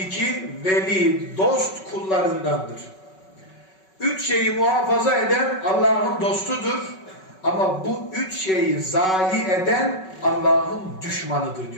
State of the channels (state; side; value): late; right; 5.3 ms